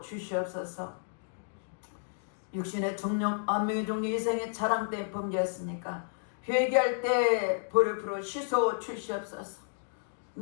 육신의 정령 안명의 종류 이생의 자랑 때 범죄했으니까 회개할 때 보혈로 씻어 주시옵소서.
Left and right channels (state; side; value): silent; right; digital silence